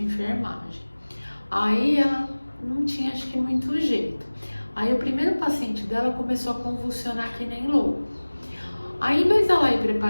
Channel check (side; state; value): both; inverted; correlation -1.00